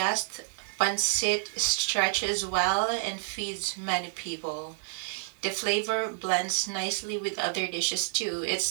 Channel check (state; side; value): silent; left; 58 dB below the other